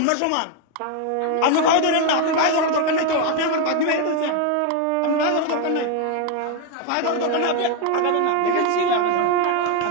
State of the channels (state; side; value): different; both; correlation 0.01